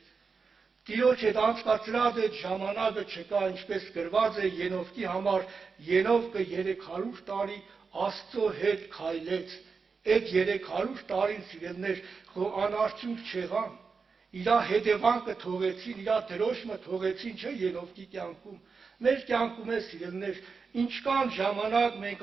Տիրոջ հետ անցկացրած այդ ժամանակը չկա, ինչպես գրված է Ենովկի համար, Ենովկը 300 տարի Աստծո հետ քայլեց։ Այդ 300 տարին, սիրելիներ, անարդյունք չեղան։ Իրա հետևանքը թողեցին, իրա դրոշմը թողեցին, չէ, Ենովկի կյանքում։ Մեր կյանքում է, սիրելիներ, ինչքան ժամանակ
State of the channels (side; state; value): left; quieter; 5.0 dB